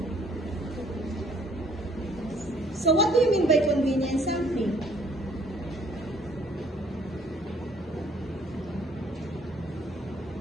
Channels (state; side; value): normal; both; correlation 0.61